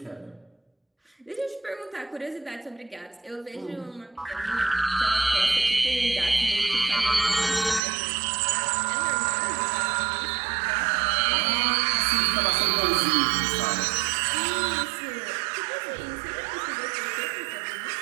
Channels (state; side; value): drops out; left; at 7.8 s